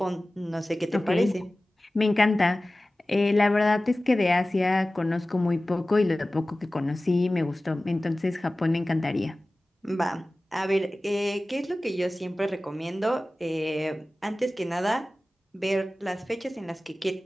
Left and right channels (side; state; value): both; normal; correlation 0.97